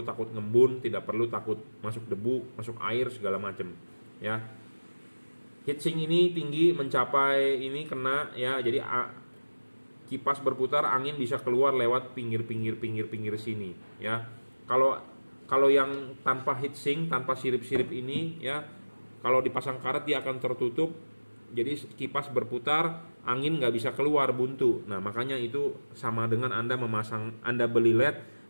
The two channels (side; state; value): both; inverted; correlation -1.00